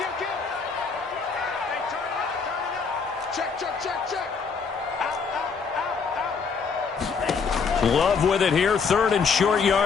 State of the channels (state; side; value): quieter; right; 5.5 dB